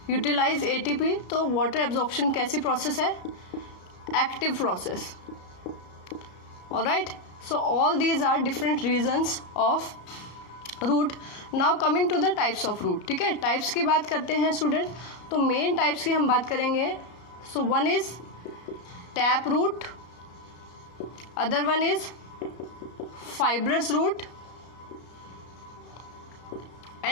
यूटिलाइज एटीपी. तो वाटर एब्जॉर्प्शन कैसी प्रोसेस है? Active process. Alright. So all these are different regions of root. Now coming to the types of root. ठीक है, types की बात करते हैं स्टूडेंट. तो मेन टाइप्स की हम बात करेंगे. So one is tap root, other one is fibrous root,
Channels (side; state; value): right; late; 33 ms